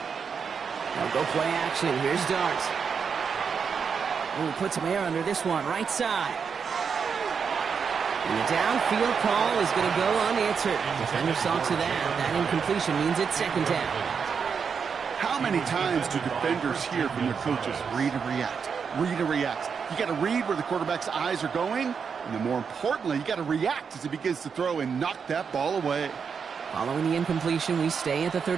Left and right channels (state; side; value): quieter; left; 6.2 dB